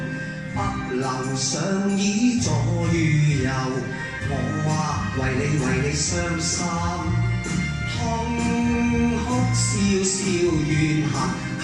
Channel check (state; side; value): identical; both; correlation 1.00